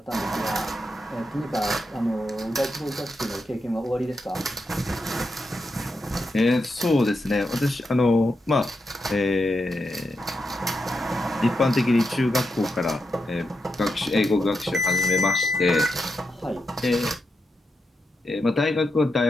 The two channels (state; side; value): normal; both; correlation 0.86